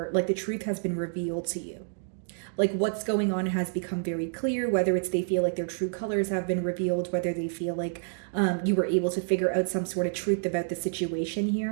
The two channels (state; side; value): silent; left; digital silence